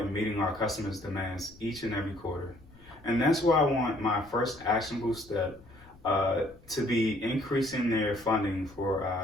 in meeting our customers' demands each and every quarter. And that's why I want my first actionable step to be increasing their funding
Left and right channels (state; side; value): noise; left; rumble, 24 dB below the sound